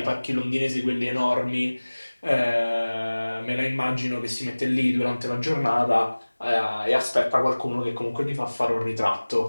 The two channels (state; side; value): inverted; both; correlation -1.00